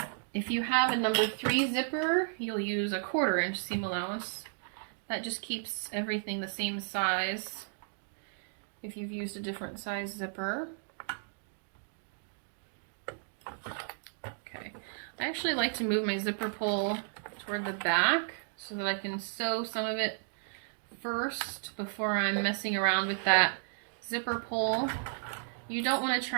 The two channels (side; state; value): left; silent; digital silence